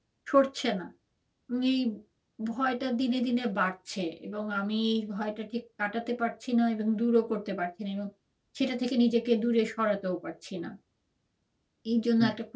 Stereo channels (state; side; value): identical; both; correlation 1.00